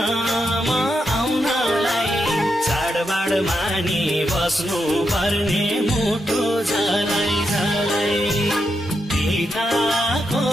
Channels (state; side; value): normal; both; correlation 0.84